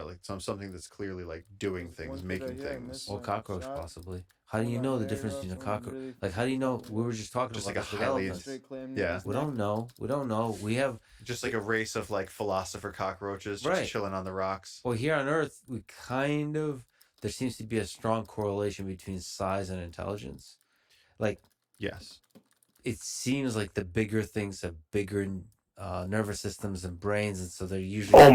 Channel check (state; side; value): identical; both; correlation 1.00